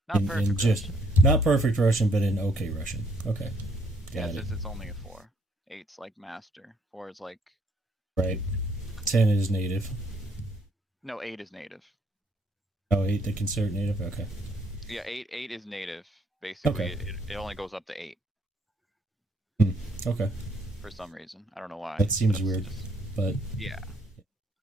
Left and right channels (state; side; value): normal; both; correlation 0.67